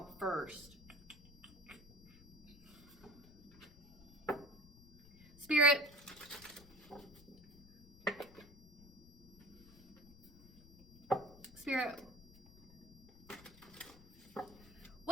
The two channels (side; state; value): left; noise; rumble, 22 dB below the sound